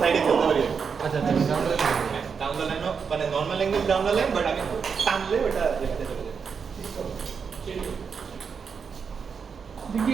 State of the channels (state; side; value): quieter; left; 6.1 dB